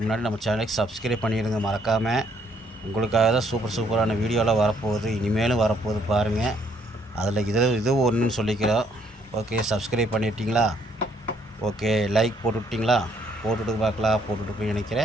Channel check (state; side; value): normal; both; correlation 0.68